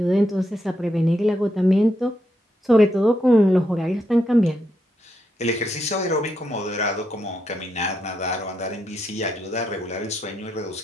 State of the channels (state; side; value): normal; both; correlation 0.81